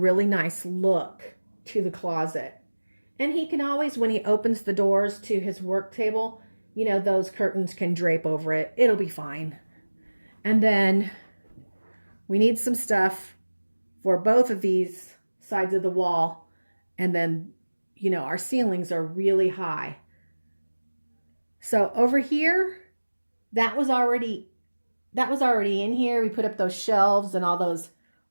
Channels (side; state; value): both; inverted; correlation -1.00